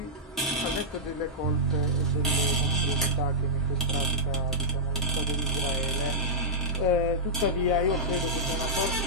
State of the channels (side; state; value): both; normal; correlation -0.12